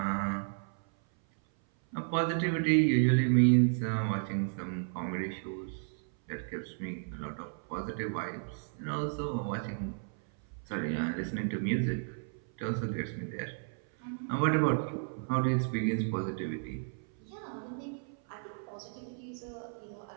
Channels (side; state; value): left; silent; 56 dB below the other